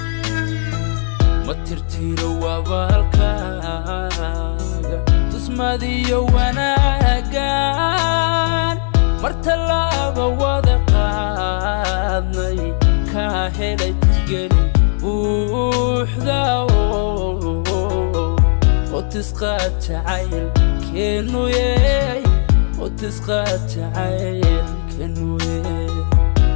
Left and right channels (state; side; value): silent; right; 60 dB below the other